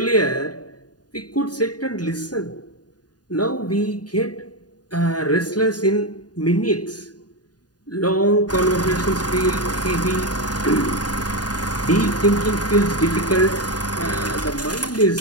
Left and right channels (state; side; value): late; right; 0.69 ms